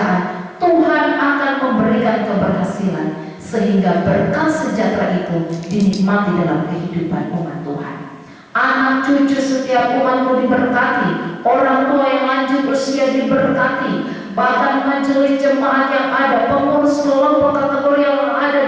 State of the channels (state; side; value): identical; both; correlation 1.00